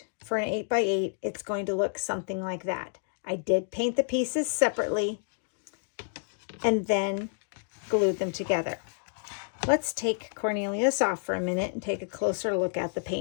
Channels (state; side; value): silent; right; digital silence